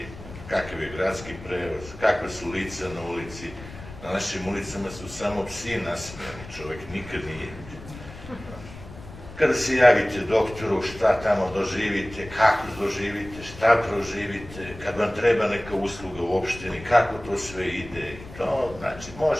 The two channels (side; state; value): left; noise; rumble, 16 dB below the sound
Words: Kakav je gradski prevoz, kakva su lica na ulici. Na našim ulicama su samo psi nasmijani, čovek nikad nije. Kada se javite doktoru, šta tamo doživite, kako doživite, šta proživite, kad vam treba neka usluga u opštini, kako to sve ide. To, znači,